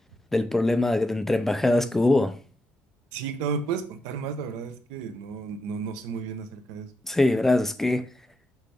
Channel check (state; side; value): normal; both; correlation 0.84